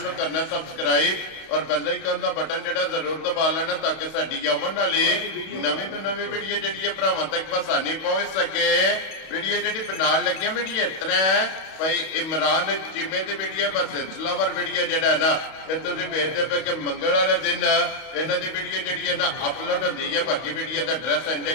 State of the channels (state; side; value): late; right; 31 ms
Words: नूं करना सबसक्राइब और बेल आइकन दा बटन जिहड़ा जरूर दबा लेना ताकि साडी आवन वाली नवीं तो नवीं वीडियो जिहड़ी है भरावां तक आसानी पहुंच सके। वीडियो जिहड़ी बनाउण लगे वीडियो इस तरह है भाई इमरान चीमे की वीडियो बस सिलसिलावार वीडियो जिहड़ा है ना ये तुसीं वेखदे पे कि मंगल वाले दिन इन्हां दी वीडियो जिहड़ी है ना अपलोड होंदी है। बाकी वीडियो का एड्रैस है